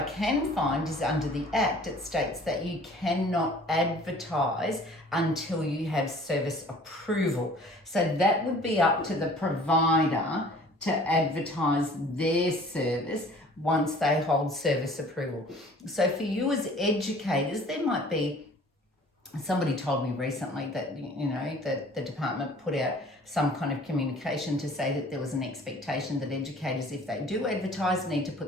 find is under the Act, it states that you cannot advertise until you have service approval. So that would be up to the provider to advertise their service once they hold service approval. So for you as educators, there might be, somebody told me recently that, that the department put out some kind of communication to say that there was an expectation that educators, if they do advertise, need to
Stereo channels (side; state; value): both; normal; correlation 0.50